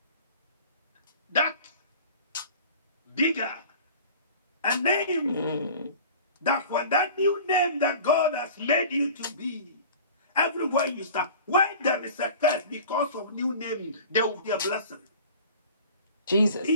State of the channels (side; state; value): both; inverted; correlation -0.42